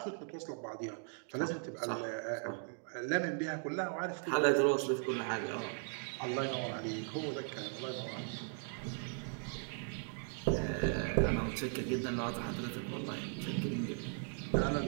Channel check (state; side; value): silent; left; 52 dB below the other